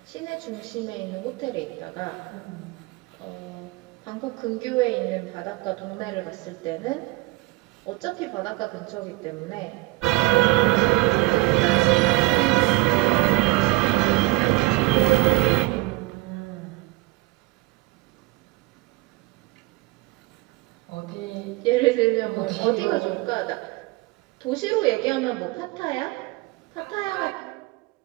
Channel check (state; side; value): quieter; left; 22.1 dB